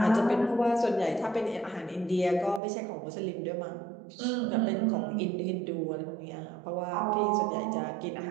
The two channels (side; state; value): left; drops out; at 2.6 s